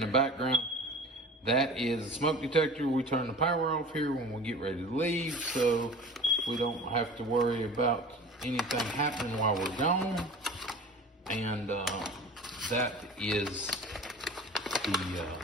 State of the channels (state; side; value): normal; both; correlation 0.39